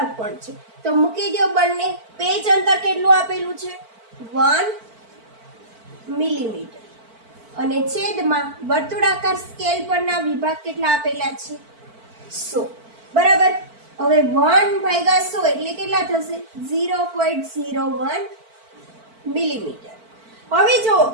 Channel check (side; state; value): left; late; 4.5 ms